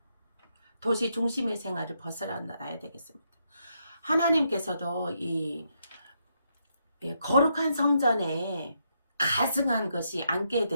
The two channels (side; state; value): both; inverted; correlation -0.79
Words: 도시 중심의 생활을 벗어나야 되겠습니다. 하나님께서도 이 거룩한 성전에 가증한 것이 앉게